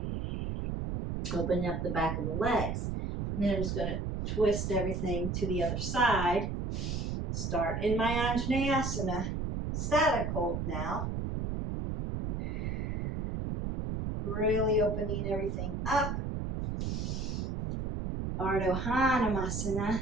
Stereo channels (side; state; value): right; noise; rumble, 2 dB below the sound